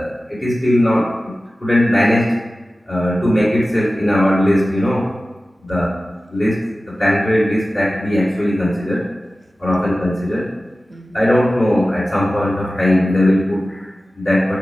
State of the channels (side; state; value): both; normal; correlation 0.96